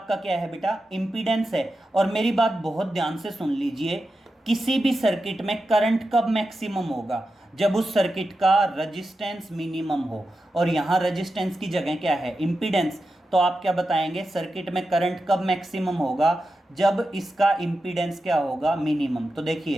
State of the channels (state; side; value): normal; both; correlation 0.90